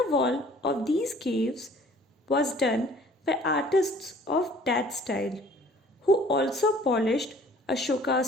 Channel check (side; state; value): both; normal; correlation 0.53